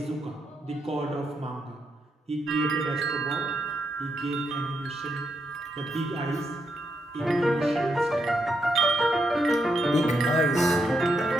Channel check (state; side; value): normal; both; correlation 0.81